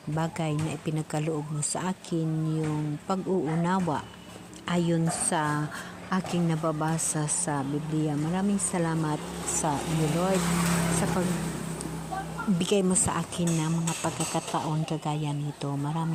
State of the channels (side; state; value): both; identical; correlation 1.00